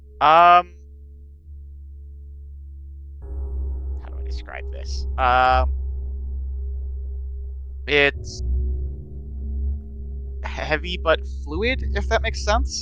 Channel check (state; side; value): identical; both; correlation 1.00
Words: How do I describe this? It's heavy but fluid, if that makes